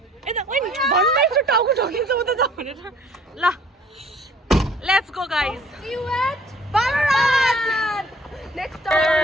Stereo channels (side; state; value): both; normal; correlation 0.55